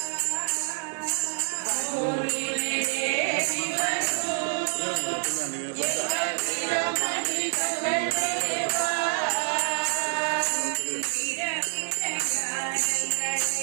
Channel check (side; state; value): left; silent; 56 dB below the other